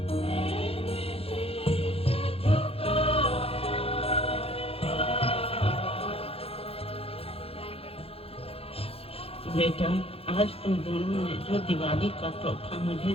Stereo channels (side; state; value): right; late; 0.28 ms